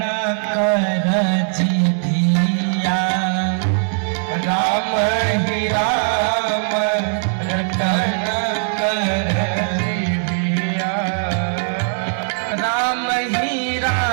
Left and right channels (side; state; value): left; silent; digital silence